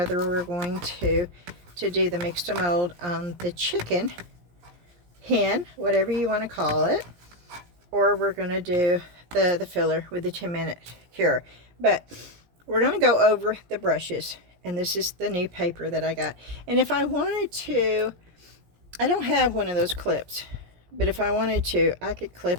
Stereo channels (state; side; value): late; left; 17 ms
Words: we're going to do the mix to mold on the chicken hen, whatever you want to call it, or we're going to do the filler with the 10-minute cure. But we're going to go over the brushes, and this is the new paper that I got. And if I wanted to, I don't have one of those clips, but if I wanted to, I could